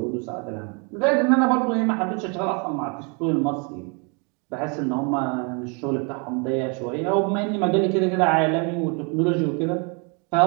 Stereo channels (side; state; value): left; quieter; 34.7 dB